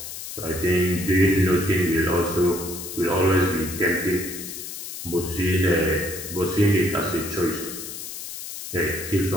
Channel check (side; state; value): left; noise; hiss, 9 dB below the sound